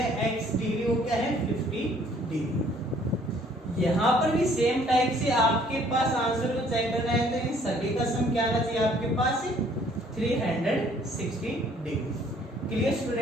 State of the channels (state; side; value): normal; both; correlation 0.60